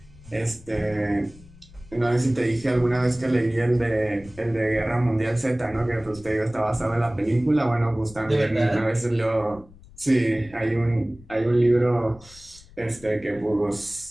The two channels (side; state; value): left; noise; rumble, 22 dB below the sound